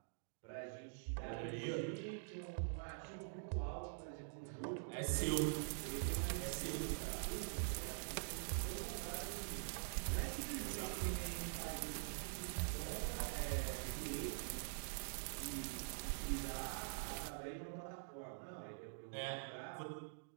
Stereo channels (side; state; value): left; silent; digital silence